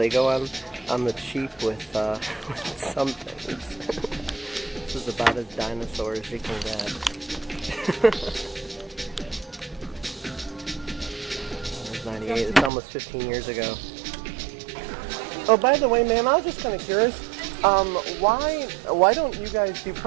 go on the cheap with some things. This is about as dinosaur as you can get. It's 98. It's almost 15 years ago. Oh, by the way, ma'am, I was just kind of curious. Why don't you guys do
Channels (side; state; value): left; drops out; at 12.7 s